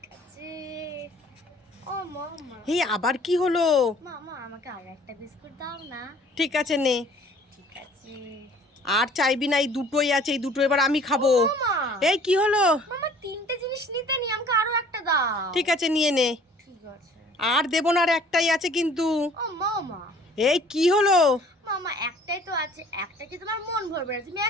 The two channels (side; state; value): both; normal; correlation 0.53